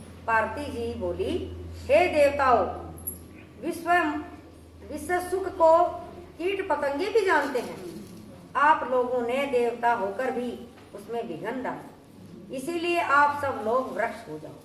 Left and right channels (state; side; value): identical; both; correlation 1.00